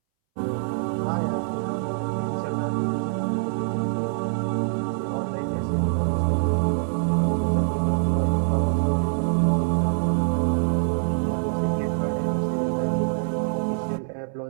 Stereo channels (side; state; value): left; silent; 62 dB below the other